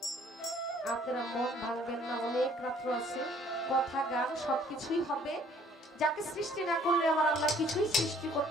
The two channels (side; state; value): both; normal; correlation 0.58